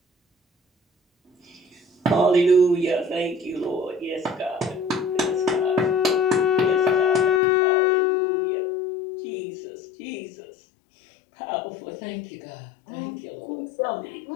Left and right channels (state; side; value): drops out; right; at 7.4 s